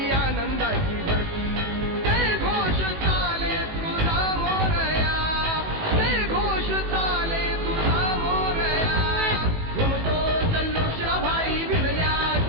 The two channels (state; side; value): late; left; 18 ms